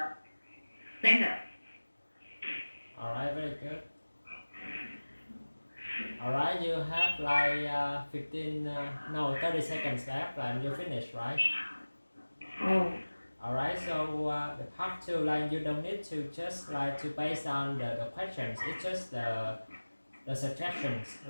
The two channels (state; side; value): inverted; both; correlation -1.00